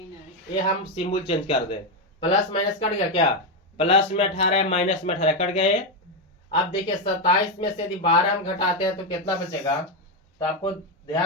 ये हम सिंबल चेंज कर दे। प्लस माइनस कट गया क्या प्लस में 18 माइनस में 18 कट गए। अब देखिए 27 में से यदि 12 हम घटाते हैं तो कितना बचेगा। तो आपको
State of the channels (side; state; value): both; normal; correlation 0.06